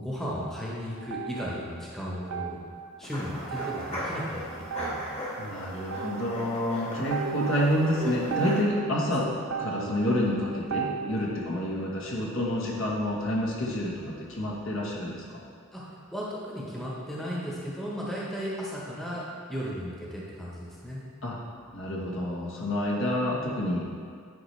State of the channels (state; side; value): normal; both; correlation 0.49